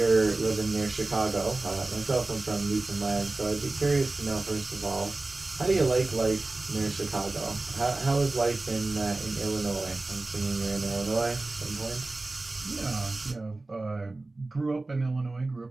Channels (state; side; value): quieter; left; 3.1 dB